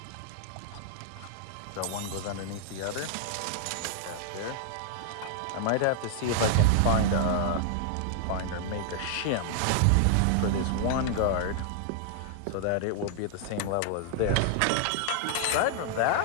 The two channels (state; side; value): different; both; correlation -0.01